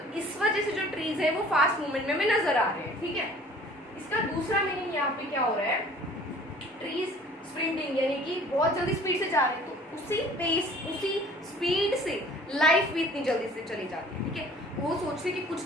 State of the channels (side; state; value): both; normal; correlation 0.50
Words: इस वजह से जो ट्रीज है वो फास्ट मूवमेंट में हमें नजर आ रहे हैं, ठीक है. इसका दूसरा मीनिंग यहाँ पे क्या हो रहा है? ट्रीज स्प्रिंटिंग यानी कि बहुत जल्दी स्पीड से जा रहे हैं, तो उसी पेस, उसी स्पीड से लाइफ भी इतनी जल्दी से चली जाती है, ठीक है. वो सोचते कि कुछ